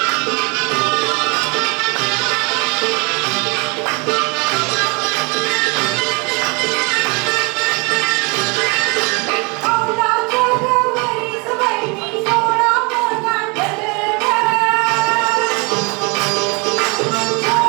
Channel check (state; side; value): quieter; left; 30.3 dB